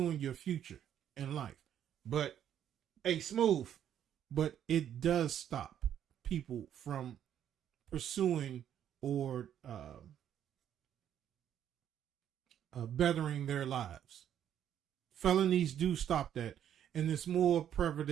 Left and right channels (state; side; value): quieter; left; 10.0 dB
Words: your future in life. But smooth, but it does stop people from pursuing or bettering their lives. Felonies do stop that, and it's more